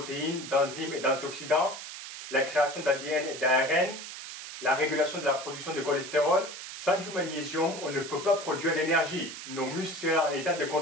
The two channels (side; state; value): right; noise; hiss, 10 dB below the sound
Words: d'enzymes et d'antioxydants, la création d'ADN et d'ARN, la régulation de la production de cholestérol. Sans du magnésium, on ne peut pas produire d'énergie. Nos muscles seraient en état de